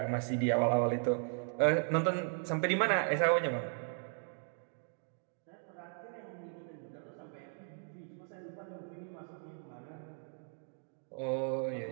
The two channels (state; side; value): silent; left; 53 dB below the other